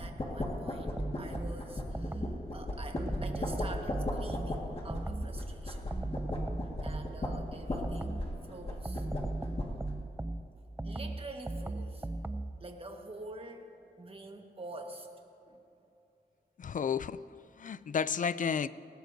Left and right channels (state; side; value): normal; both; correlation 0.71